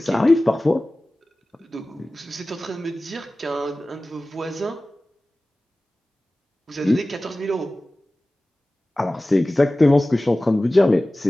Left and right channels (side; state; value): both; normal; correlation 0.97